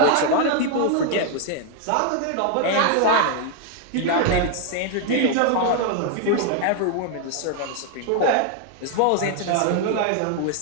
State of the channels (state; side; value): different; both; correlation 0.00